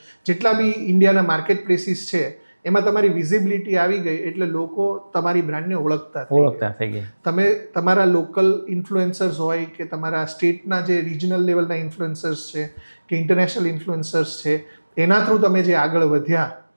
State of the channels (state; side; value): inverted; both; correlation -1.00